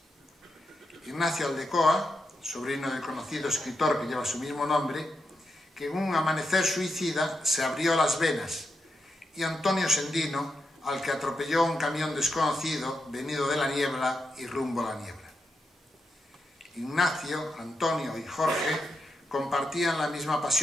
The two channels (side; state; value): both; normal; correlation 0.85